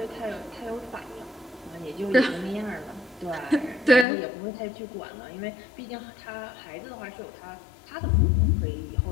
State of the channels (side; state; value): right; drops out; at 4.0 s